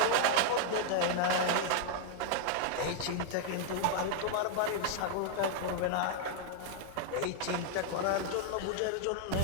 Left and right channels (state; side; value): different; both; correlation 0.00